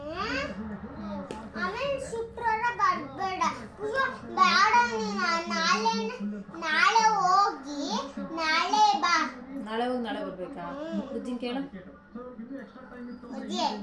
ಶುಕ್ರವಾರ ಬರ್ಬೇಡ, ನಾಳೆ ಹೋಗಿ ನಾಳೆ ಬಾ. ನಾಳೆ ಹೋಗಿ ನಾಳೆ ಬರ್ಬೇಕಾ? ಬುಜ್ಜಿನ ಕೇಳು.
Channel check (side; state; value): both; identical; correlation 1.00